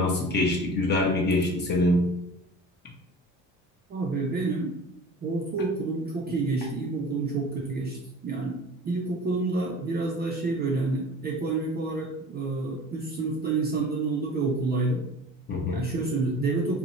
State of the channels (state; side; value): normal; both; correlation 0.41